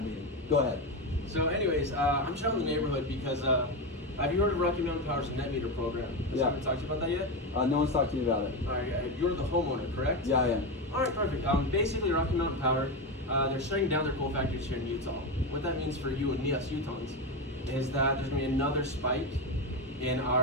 meeting. Go ahead. So anyways, I'm showing the neighborhood because have you heard of Rocky Mountain Power's net meter program? Has someone talked to you about that yet? No one's talked to me about it. All right, you're the homeowner, correct? Yeah, I am. All right, perfect. Basically, Rocky Mountain Power, they're shutting down their coal factories here in Utah. What that means for you and me, us Utahns, is that there's going to be another spike in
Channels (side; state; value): both; normal; correlation 0.14